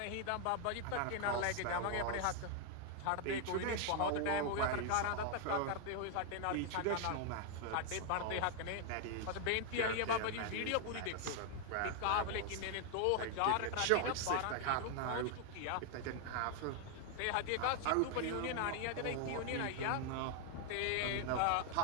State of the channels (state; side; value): different; both; correlation 0.00